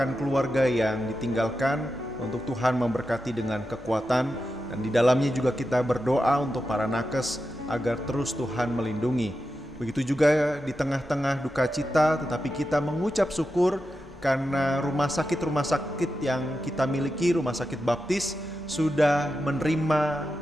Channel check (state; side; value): normal; both; correlation 0.89